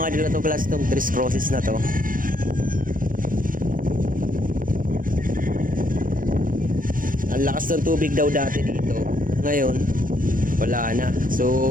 idol katuklas, itong Tres Cruces na to. Ang lakas ng tubig daw dati dito, ngayon wala na.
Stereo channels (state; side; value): late; left; 0.40 ms